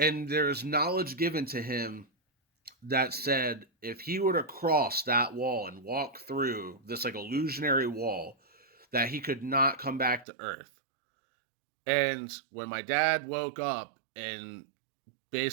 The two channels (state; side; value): drops out; left; at 10.2 s